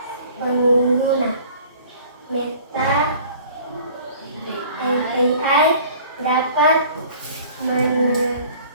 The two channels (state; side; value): inverted; both; correlation -0.49